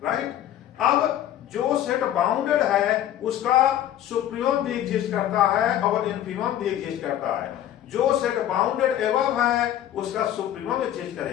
राइट। अब जो सेट बाउंडेड है उसका सुप्रीमम भी एग्जिस्ट करता है और इन्फीमम भी एग्जिस्ट करता है। जो सेट बाउंडेड एबव है उसका सुप्रीमम एग्जिस्ट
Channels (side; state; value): right; quieter; 11.7 dB